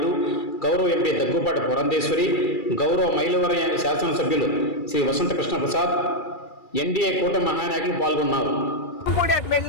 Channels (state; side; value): late; right; 2.3 ms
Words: గౌరవ ఎంపీ దగ్గుపాటి పురంధేశ్వరి, గౌరవ మైలవరం శాసనసభ్యులు శ్రీ వసంత కృష్ణ ప్రసాద్, ఎన్డీఏ కూటమి మహానాయకులు పాల్గొన్నారు.